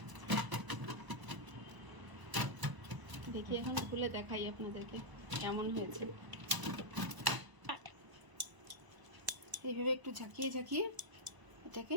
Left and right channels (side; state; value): left; late; 1.0 ms